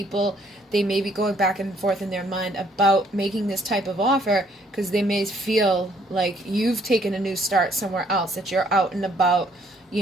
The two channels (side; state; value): both; normal; correlation 0.65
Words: they may be going back and forth in their mind about making this type of offer because they may feel like you've taken a new start somewhere else, that you're out and about,